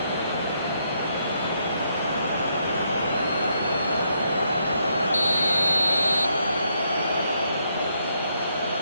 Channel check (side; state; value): both; inverted; correlation -0.76